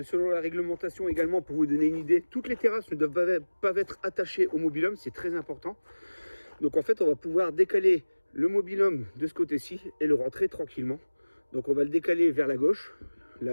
selon la réglementation également, pour vous donner une idée, toutes les terrasses ne doivent pas être attachées au mobil-home, c'est très important. Donc en fait, on va pouvoir décaler le mobil-home de ce côté-ci et le rentrer tranquillement. Donc on va le décaler vers la gauche.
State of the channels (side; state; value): both; inverted; correlation -1.00